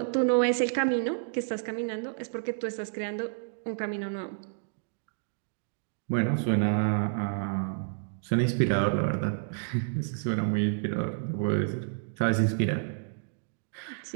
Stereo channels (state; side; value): silent; left; digital silence